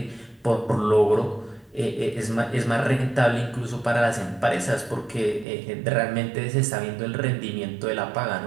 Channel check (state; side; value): drops out; left; at 5.5 s